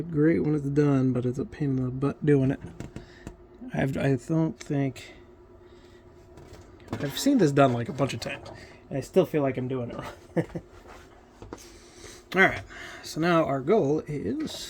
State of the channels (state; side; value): identical; both; correlation 1.00